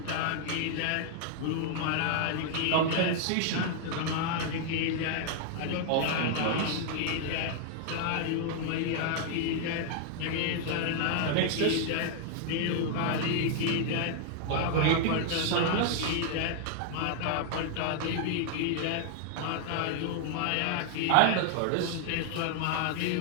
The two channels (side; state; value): both; different; correlation 0.00